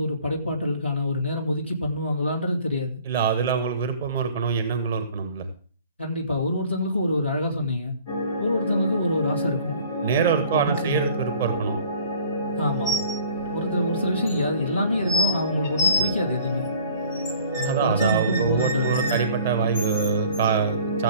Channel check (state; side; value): inverted; both; correlation -0.51